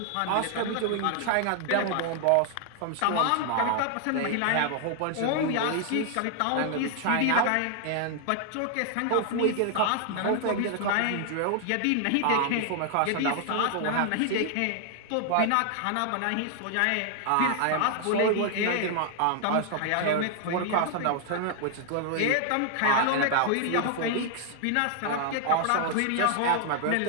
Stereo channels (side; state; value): both; different; correlation 0.00